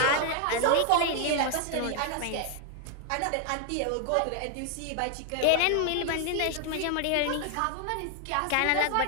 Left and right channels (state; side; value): different; both; correlation 0.00